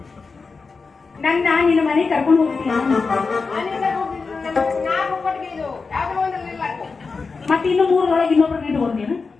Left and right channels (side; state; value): right; quieter; 4.5 dB